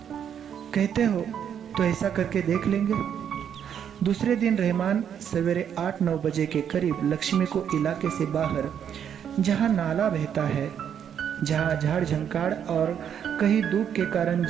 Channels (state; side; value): quieter; left; 8.6 dB